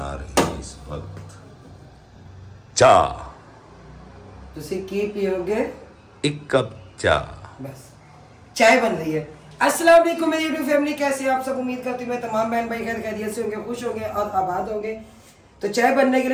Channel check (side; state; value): both; identical; correlation 1.00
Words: रही है इस वक्त चाय। तुसी की पियोगे? एक कप चाय। बस चाय बन रही है। अस्सलाम वालेकुम मेरी यूट्यूब फैमिली, कैसे हैं आप सब? उम्मीद करती हूँ मैं तमाम बहन भाई खैर खैरियत से होंगे, खुश होंगे और आबाद होंगे। तो चाय बनने के